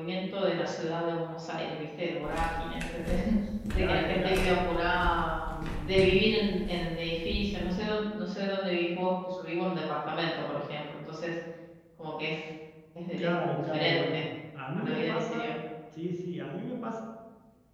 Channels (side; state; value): both; identical; correlation 1.00